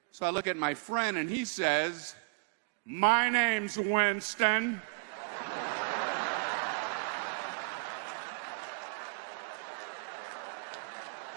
So I look at my friend, and he says, my name's Winston.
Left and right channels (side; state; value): left; quieter; 36.8 dB